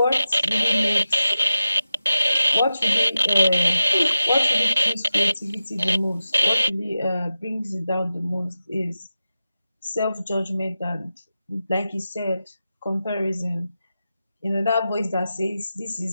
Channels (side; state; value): both; inverted; correlation -0.92